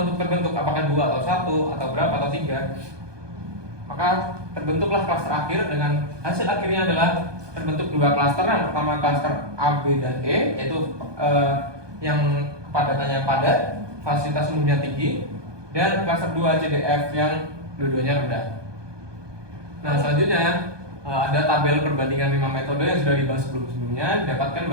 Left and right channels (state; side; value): late; left; 1.2 ms